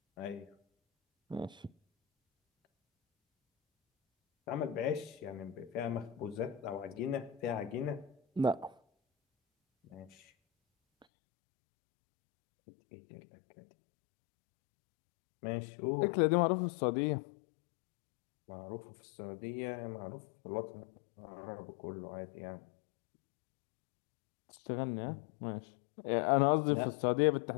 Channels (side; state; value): right; drops out; at 11.1 s